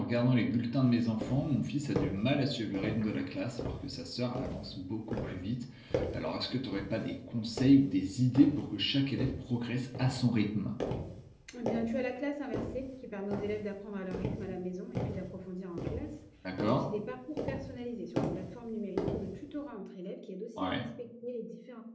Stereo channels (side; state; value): both; identical; correlation 1.00